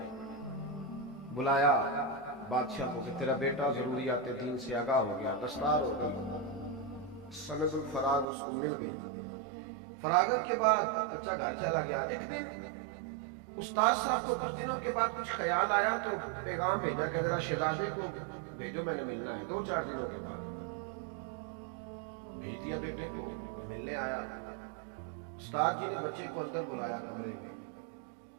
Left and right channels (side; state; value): left; drops out; at 8.2 s